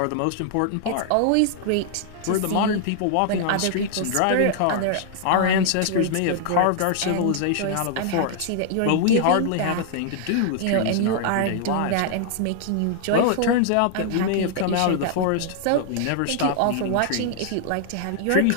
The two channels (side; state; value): both; different; correlation 0.00